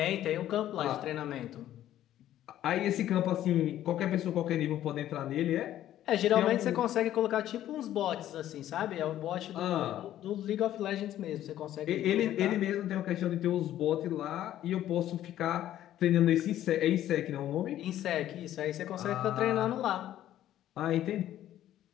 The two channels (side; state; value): right; quieter; 12.5 dB